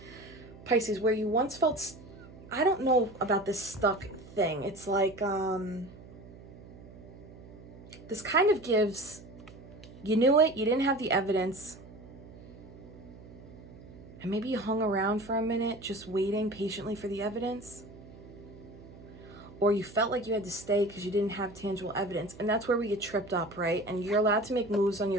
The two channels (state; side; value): noise; right; hum, 18 dB below the sound